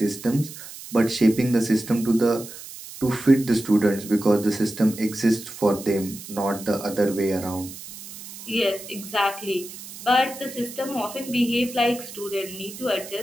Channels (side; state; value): right; noise; hiss, 14 dB below the sound